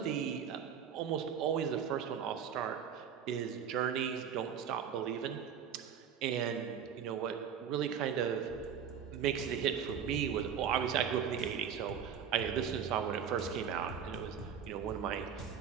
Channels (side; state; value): left; quieter; 7.9 dB